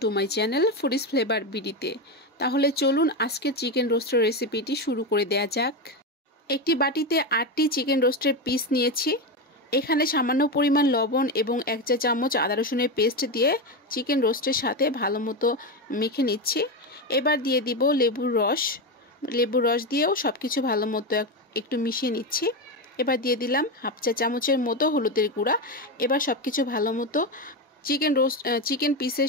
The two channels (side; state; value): both; normal; correlation 0.14